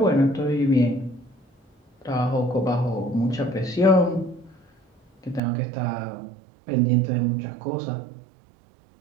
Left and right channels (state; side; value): drops out; left; at 5.4 s